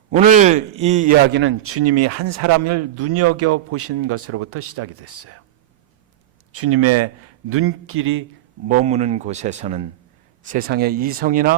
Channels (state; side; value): quieter; left; 13.1 dB